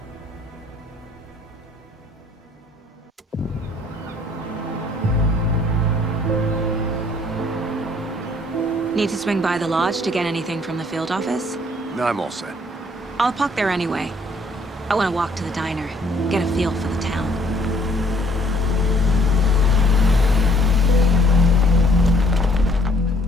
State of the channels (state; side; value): normal; both; correlation 0.62